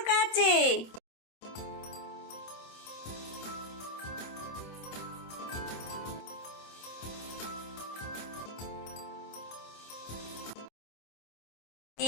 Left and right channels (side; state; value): right; late; 26 ms